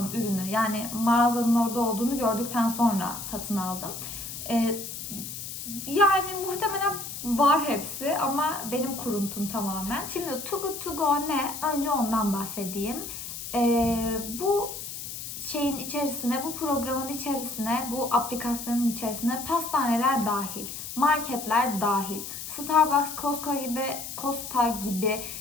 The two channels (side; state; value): left; noise; hiss, 8 dB below the sound